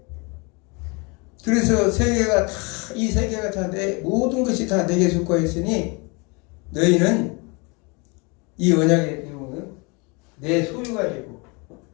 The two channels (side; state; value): right; quieter; 29.6 dB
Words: 그래서 세계가 다, 이 세계가 다 모든 것이 다 내게 속하였으니 너희는 이 언약의 내용은 내 소유가 되고